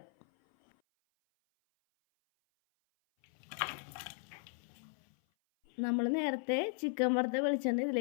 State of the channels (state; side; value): silent; right; 54 dB below the other